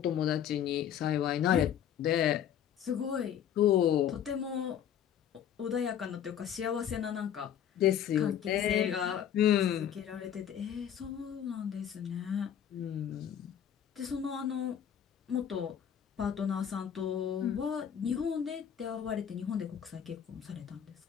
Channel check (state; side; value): quieter; right; 9.4 dB